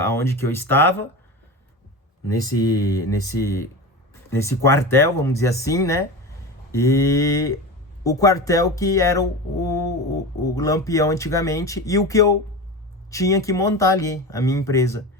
aonde que eu estava, nesse quartel, vamos dizer assim, né? E o quartel que era o Lampião antigamente, e o que eu tinha que montar ali, a minha empresa.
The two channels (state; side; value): normal; both; correlation 0.26